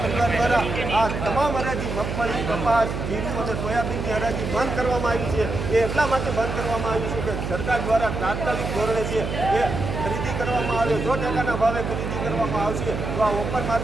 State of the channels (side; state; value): right; noise; hum, 4 dB below the sound